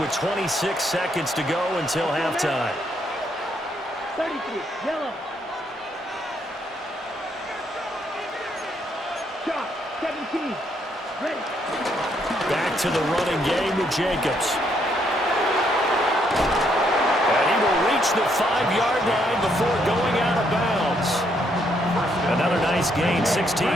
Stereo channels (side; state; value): both; normal; correlation 0.73